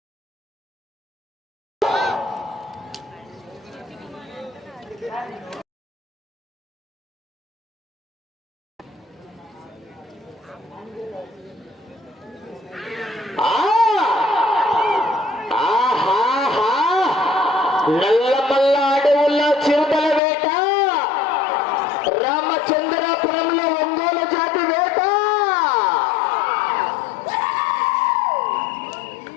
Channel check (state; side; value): drops out; right; at 20.2 s